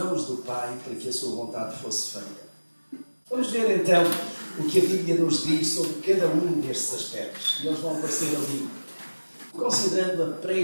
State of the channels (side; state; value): both; inverted; correlation -1.00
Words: do Pai para que a sua vontade fosse feita. Vamos ver então o que a Bíblia nos diz sobre cada um destes aspectos. E eles vão aparecer ali. Considerando a